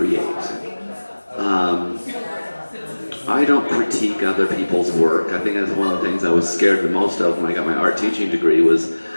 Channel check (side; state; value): both; inverted; correlation -1.00